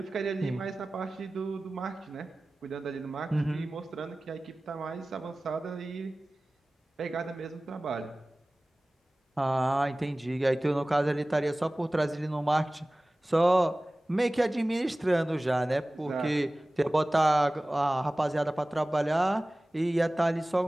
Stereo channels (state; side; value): normal; both; correlation 0.98